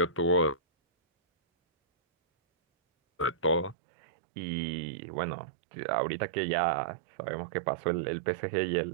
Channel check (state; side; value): drops out; left; at 3.8 s